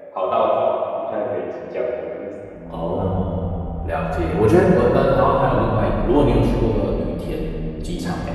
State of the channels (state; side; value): identical; both; correlation 1.00